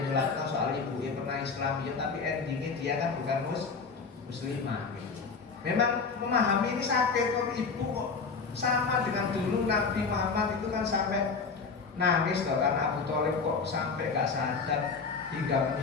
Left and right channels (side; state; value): right; quieter; 4.9 dB